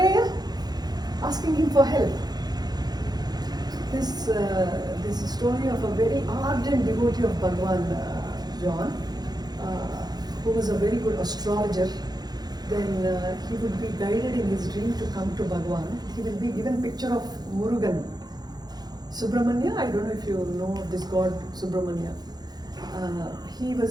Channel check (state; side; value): late; left; 0.19 ms